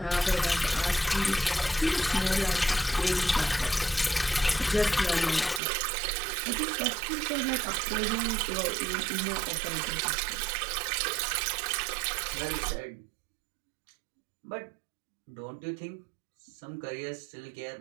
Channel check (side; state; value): left; drops out; at 5.6 s